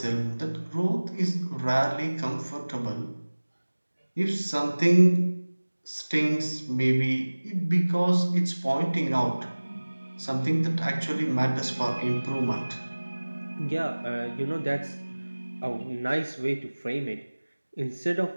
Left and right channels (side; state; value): both; inverted; correlation -1.00